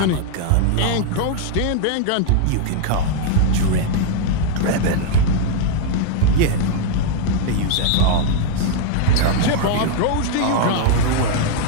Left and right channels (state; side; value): different; both; correlation 0.00